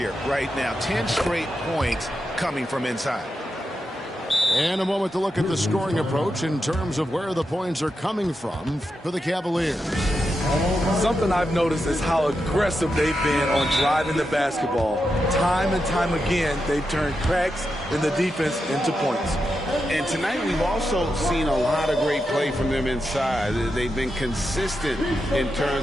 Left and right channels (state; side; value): normal; both; correlation 0.87